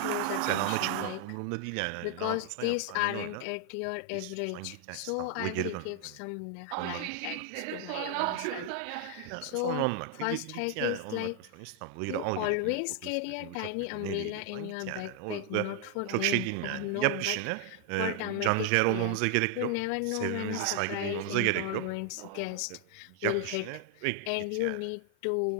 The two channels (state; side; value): different; both; correlation 0.00